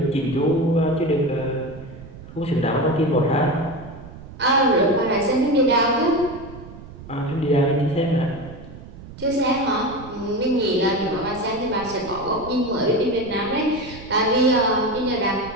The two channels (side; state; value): right; noise; rumble, 16 dB below the sound